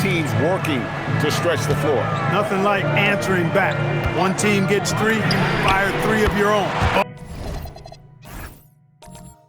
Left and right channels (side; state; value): both; identical; correlation 1.00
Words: teams working to stretch the floor. Nothing like answering back. One team gets 3, you fire 3 of your own.